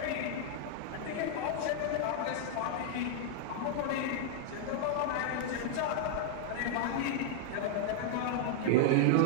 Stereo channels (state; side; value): different; both; correlation -0.01